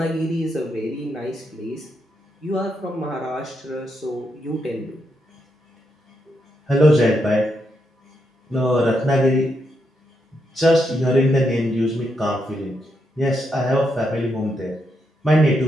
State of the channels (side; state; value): both; normal; correlation 0.81